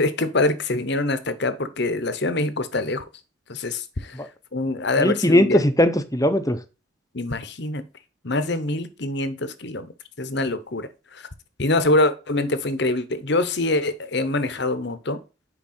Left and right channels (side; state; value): both; normal; correlation 0.30